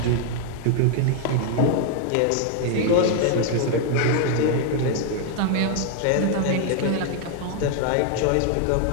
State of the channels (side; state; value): both; different; correlation 0.00